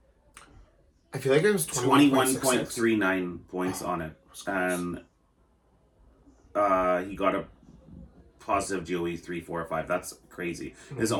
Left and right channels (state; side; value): identical; both; correlation 1.00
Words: I feel like it was 21.39 points on it. And he got a positive GOE 3, 4, 5. That's crazy. Mm-hmm. His